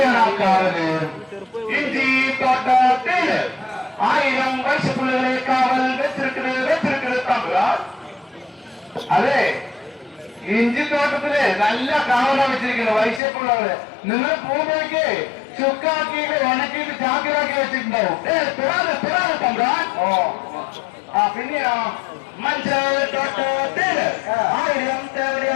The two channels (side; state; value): right; drops out; at 13.2 s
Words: ആ കാവല്? ഇഞ്ചി തോട്ടത്തില് 1000 വയസ്സുപിള്ളകളെ കാവൽ വെച്ചിരിക്കുന്നത് തമ്പുരാ. അതെ, ഇഞ്ചിത്തോട്ടത്തില് നല്ല കാവലാണ് വെച്ചിരിക്കുന്നത് വൈശ്യപ്പിള്ളകള്. നിങ്ങൾ പോകുമ്പോഴേക്ക് ചുക്കാക്കിയിട്ട് ഉണക്കിയിട്ട് ചാക്കിലാക്കി വെച്ചിട്ടുണ്ടാവും. പിറാതെ തമ്പുരാ. ഓ, പിന്നെയോ മഞ്ചൾ തോട്ടത്തില് 1000